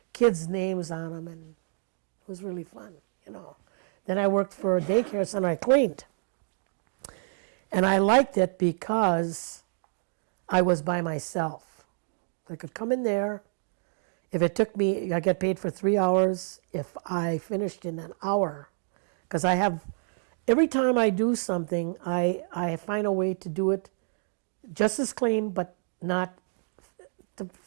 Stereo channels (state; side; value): silent; left; digital silence